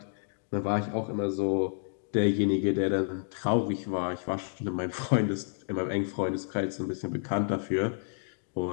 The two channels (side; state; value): right; silent; digital silence